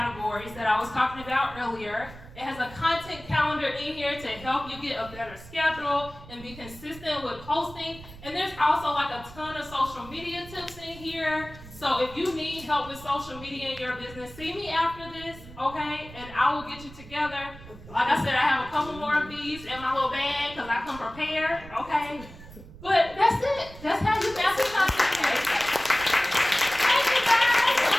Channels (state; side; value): noise; right; rumble, 17 dB below the sound